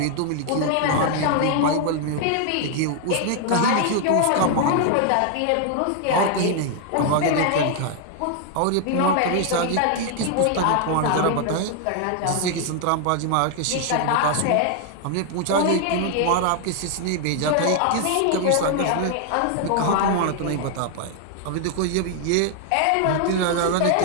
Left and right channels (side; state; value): both; different; correlation 0.00